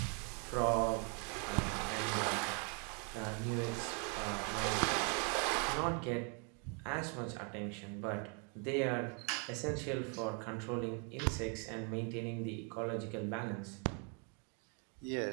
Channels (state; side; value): quieter; left; 37.7 dB